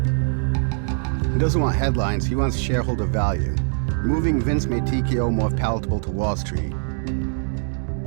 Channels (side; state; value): left; silent; 64 dB below the other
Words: He doesn't want headlines, he wants shareholder value. Removing Vince made TKO more palatable to Wall Street.